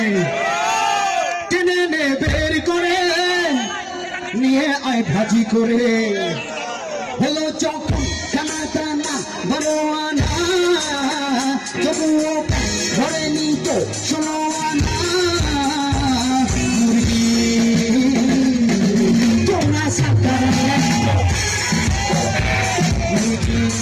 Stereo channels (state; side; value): identical; both; correlation 1.00